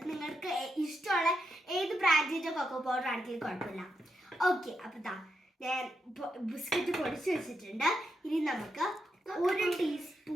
നിങ്ങൾക്ക് ഇഷ്ടമുള്ള ഏത് ബ്രാൻഡിന്റെ കൊക്കോ പൗഡർ ആണെങ്കിലും കുഴപ്പമില്ല. ഓക്കെ, അപ്പൊ ഞാൻ ബിസ്ക്കറ്റ് പൊടിച്ച് വെച്ചിട്ടുണ്ട്. ഇനി നമുക്ക് 1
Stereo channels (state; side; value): normal; both; correlation 0.83